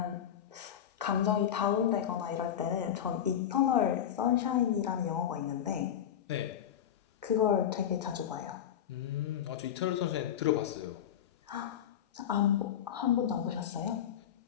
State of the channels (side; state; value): right; quieter; 9.8 dB